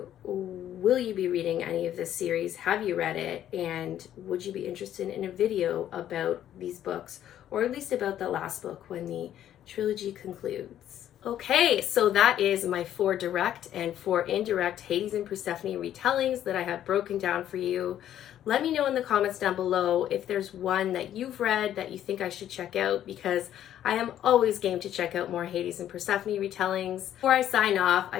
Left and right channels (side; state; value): right; quieter; 11.2 dB